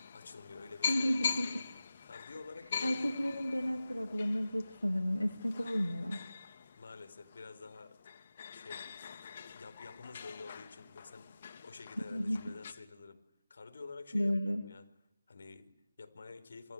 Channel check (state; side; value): inverted; both; correlation -0.95